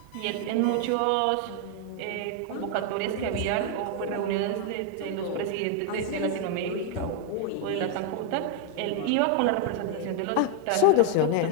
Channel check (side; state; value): both; different; correlation 0.00